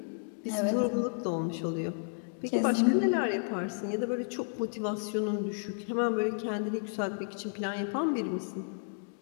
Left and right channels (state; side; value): silent; right; digital silence